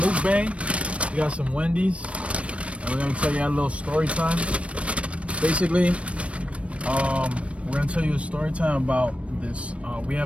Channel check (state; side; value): late; left; 0.062 ms